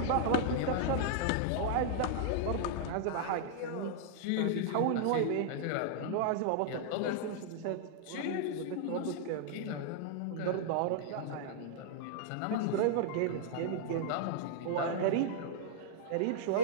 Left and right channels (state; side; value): different; both; correlation -0.01